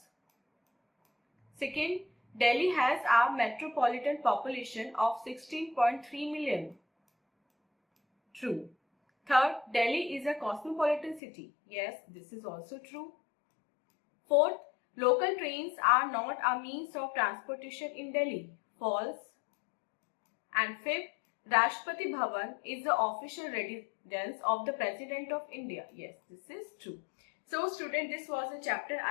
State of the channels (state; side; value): drops out; right; at 11.2 s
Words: Second, Delhi has a metropolitan population of 16.3 million. True. Third, Delhi is a cosmopolitan city. Yes, this is also true. Fourth, local trains are not a means of transportation in Delhi. False. And fifth, Rashtrapati Bhavan is the official residence of the President of India. Yes, this is true. So student, this was a chapter.